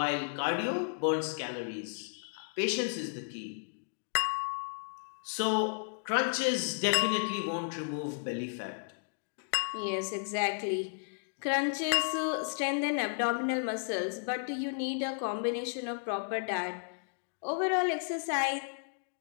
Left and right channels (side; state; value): right; silent; digital silence